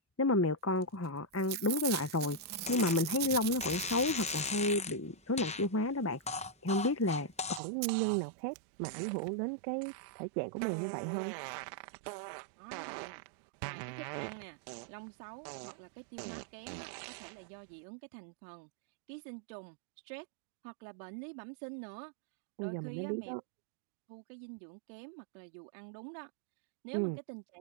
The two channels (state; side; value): drops out; left; at 7.6 s